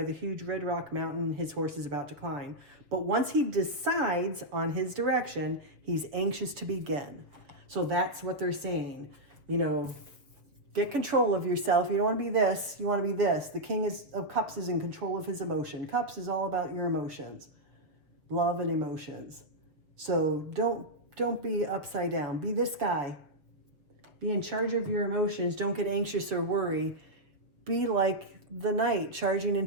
the huge red rock mountain his horse is about to climb. But once he decides on his direction, he's anxious to begin. So that's what they're saying. You know, get control of yourself. You don't want to be this. You want to be this. The King of Cups is in control of his emotion. Cups is all about your emotions. Love and emotions. So don't be upside down. Be this guy. Be in charge of your emotions. Don't get anxious or worry. Be like the knight charging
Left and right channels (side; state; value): left; late; 6.4 ms